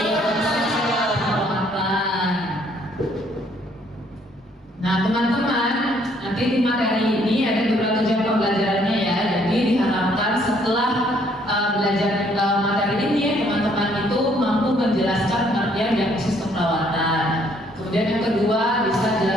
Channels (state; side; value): normal; both; correlation 0.65